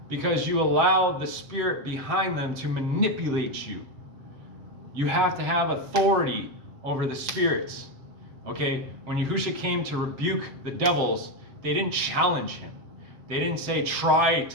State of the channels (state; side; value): late; left; 7.5 ms